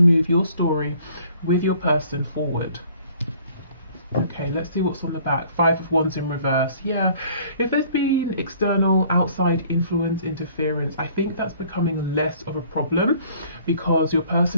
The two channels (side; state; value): both; inverted; correlation -0.56